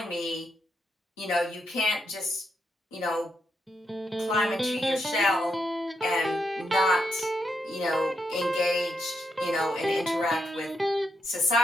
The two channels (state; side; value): normal; both; correlation 0.81